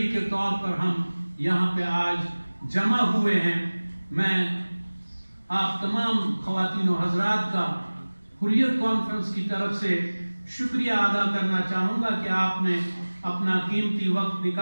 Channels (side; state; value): both; inverted; correlation -1.00